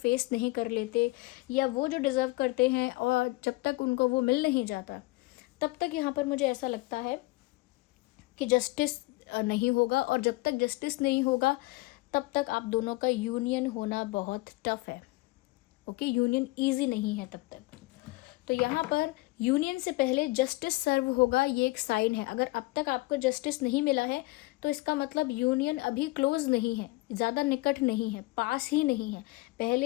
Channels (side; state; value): right; quieter; 22.1 dB